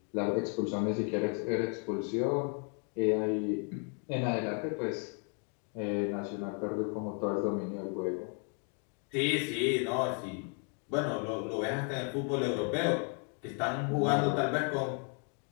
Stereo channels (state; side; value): quieter; right; 38.7 dB